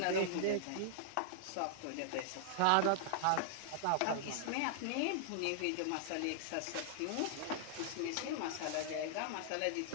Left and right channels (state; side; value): different; both; correlation -0.01